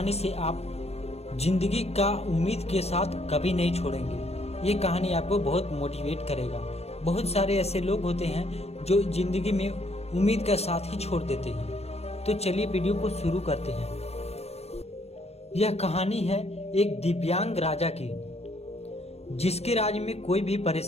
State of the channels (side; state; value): right; late; 0.30 ms